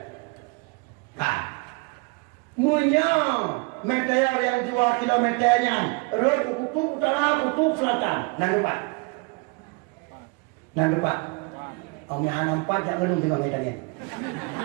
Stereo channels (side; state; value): left; quieter; 29.3 dB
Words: Munya meteor yang 2 kilometernya, road kutub utara, kutub selatan. Nan depan. Om yang nampak jangan ngelung juga ngetanya.